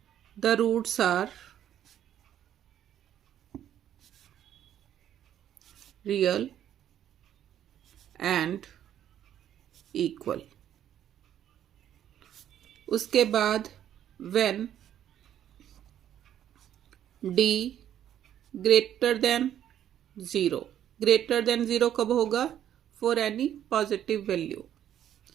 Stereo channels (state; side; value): quieter; left; 10.7 dB